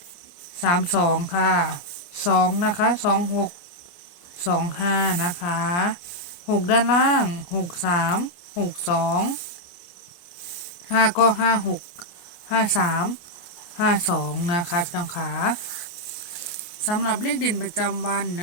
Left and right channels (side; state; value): right; late; 29 ms